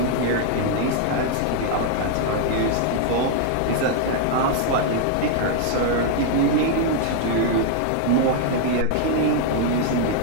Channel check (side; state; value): both; different; correlation 0.00